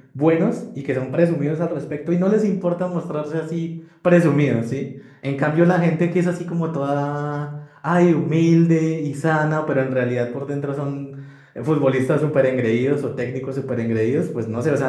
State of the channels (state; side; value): identical; both; correlation 1.00